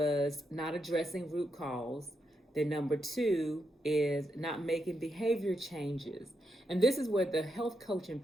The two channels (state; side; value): normal; both; correlation 0.83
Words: not addressing root cause. Then number 2 is not making behavior changes. And this is where the health coaching